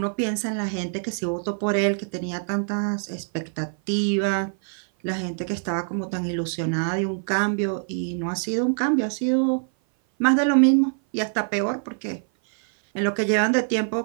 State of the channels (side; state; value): left; silent; 57 dB below the other